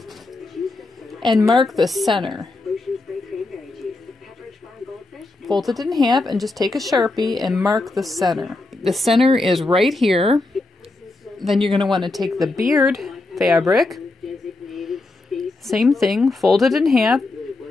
and mark the center. Fold it in half and just take a Sharpie and mark the center. The center is right here. Then you're going to want to take the beard fabric, same thing, fold it in half,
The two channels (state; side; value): quieter; right; 3.1 dB